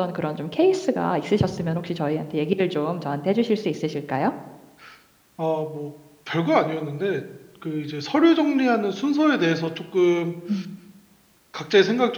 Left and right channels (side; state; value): both; identical; correlation 1.00